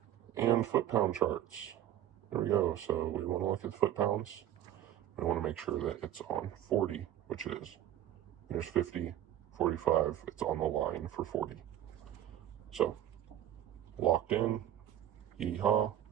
and foot-pound charts. There we go. So we want to look at the foot-pounds. We want to make sure that it's on 40, which it is. There's 50, 45. It's on the line for 40. So locked in. Yeehaw.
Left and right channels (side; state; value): left; quieter; 11.7 dB